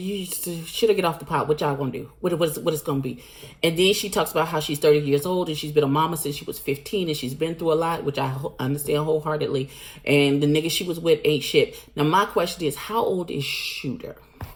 should have get off the pot. What y'all gonna do? What it's gonna be? And then she talks about how she's 30 years old and she's been a mama since she was 15, and she's been through a lot, which I understand wholeheartedly. And the nigga she was with ain't shit. Now my question is, how old is Shooter?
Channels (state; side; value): identical; both; correlation 1.00